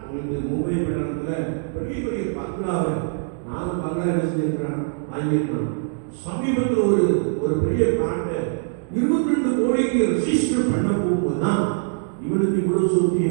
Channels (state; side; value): silent; left; digital silence